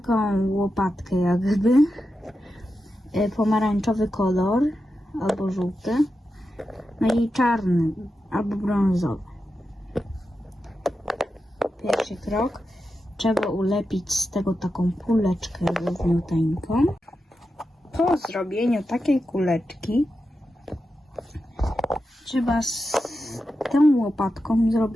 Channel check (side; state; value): both; normal; correlation 0.89